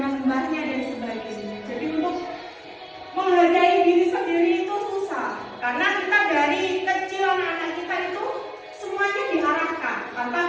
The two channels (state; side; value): identical; both; correlation 1.00